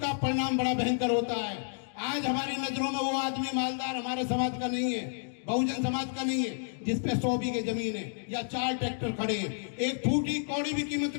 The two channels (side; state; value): right; silent; digital silence